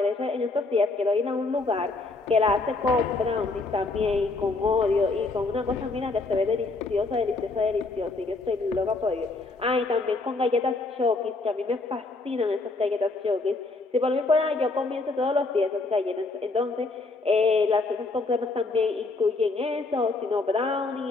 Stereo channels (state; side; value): quieter; right; 3.5 dB